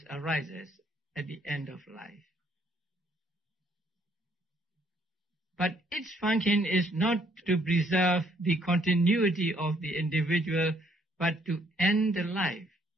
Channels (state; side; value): normal; both; correlation 0.67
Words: arises at the end of life. But its function is not to preserve the continuity of the individual, but to end the life.